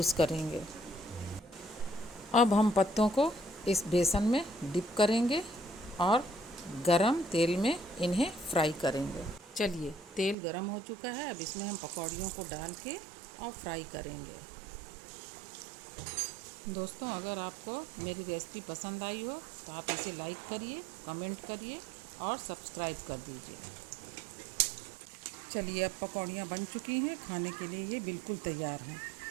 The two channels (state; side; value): drops out; left; at 10.4 s